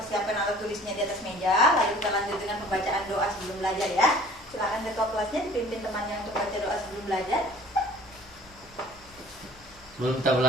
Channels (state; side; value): noise; left; rumble, 26 dB below the sound